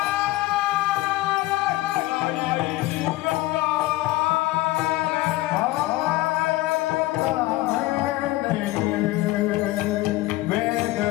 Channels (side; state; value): right; quieter; 18.3 dB